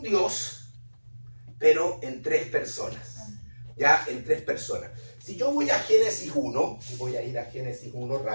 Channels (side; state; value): both; inverted; correlation -1.00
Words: Dios, pero en tres personas. Ya, en tres personas. Si yo voy a Génesis 1, y voy a ir a Génesis 1